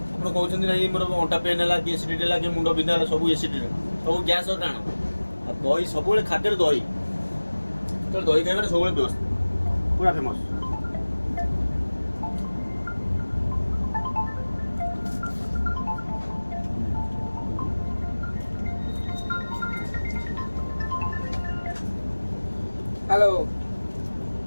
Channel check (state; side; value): inverted; both; correlation -1.00